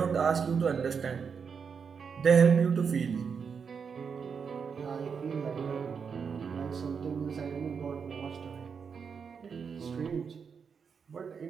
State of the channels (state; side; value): quieter; left; 6.2 dB